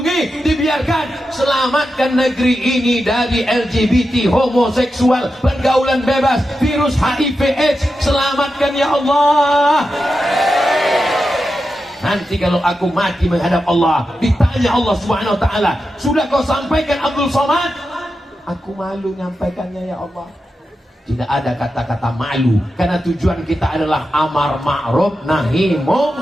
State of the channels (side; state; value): both; normal; correlation 0.90